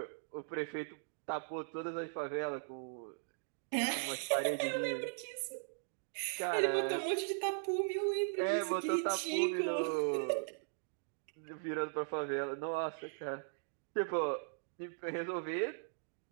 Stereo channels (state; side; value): silent; left; digital silence